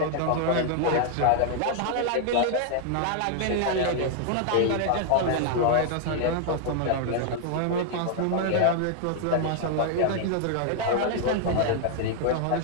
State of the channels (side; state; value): both; different; correlation -0.01